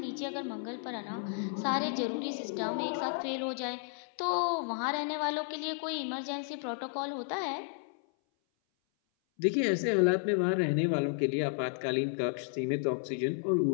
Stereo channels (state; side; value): silent; right; 56 dB below the other